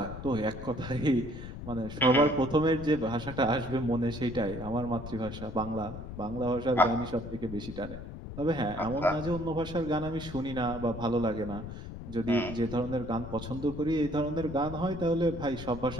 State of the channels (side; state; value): left; noise; rumble, 10 dB below the sound